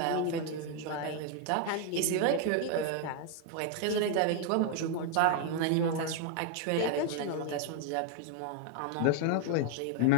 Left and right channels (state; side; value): different; both; correlation 0.00